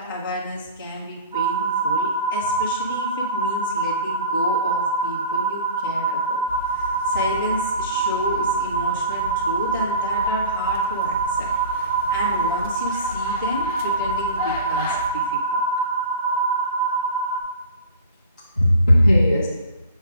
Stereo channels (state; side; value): inverted; both; correlation -0.40